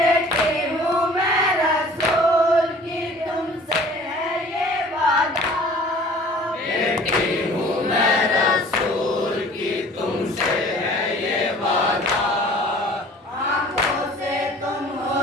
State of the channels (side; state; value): both; normal; correlation 0.48